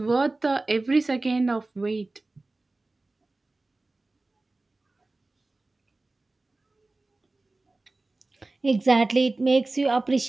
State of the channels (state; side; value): quieter; left; 3.1 dB